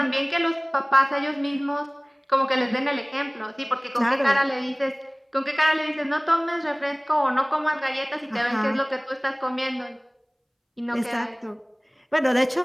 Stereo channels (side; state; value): both; identical; correlation 1.00